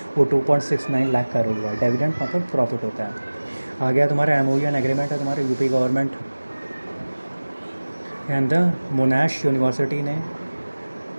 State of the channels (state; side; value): inverted; both; correlation -1.00